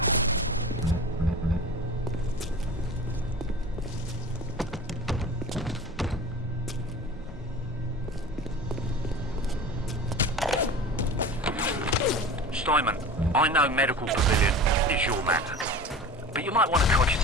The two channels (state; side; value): normal; both; correlation 0.36